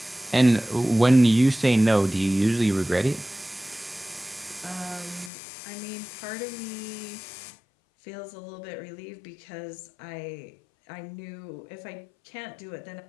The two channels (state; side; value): drops out; right; at 5.3 s